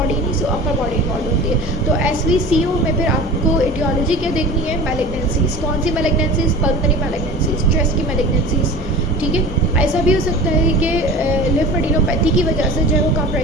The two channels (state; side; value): normal; both; correlation 0.36